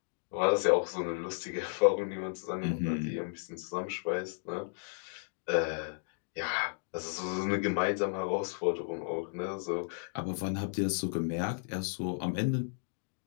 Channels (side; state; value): right; silent; digital silence